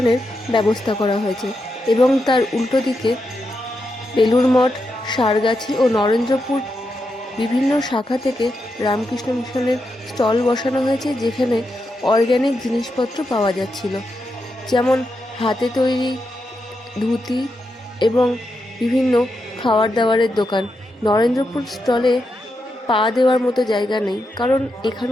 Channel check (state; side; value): normal; both; correlation 0.85